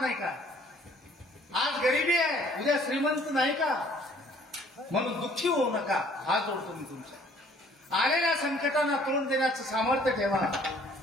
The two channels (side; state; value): both; normal; correlation 0.58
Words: नाही का? आज गरिबी आहे, उद्या श्रीमंत नाही का? म्हणून दुःखी होऊ नका. हात जोडतो मी तुमच्या. आलेल्या संकटांना तोंड देण्याचं सामर्थ्य ठेवा.